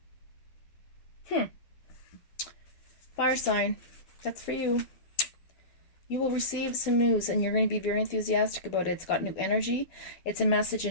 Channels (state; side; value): late; right; 12 ms